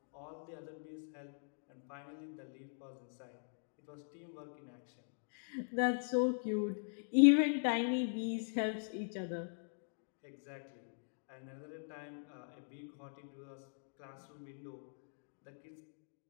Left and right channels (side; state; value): right; silent; digital silence